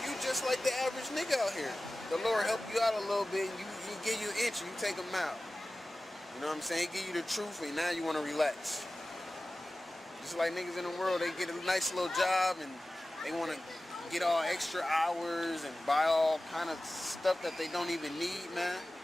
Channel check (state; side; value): normal; both; correlation 0.96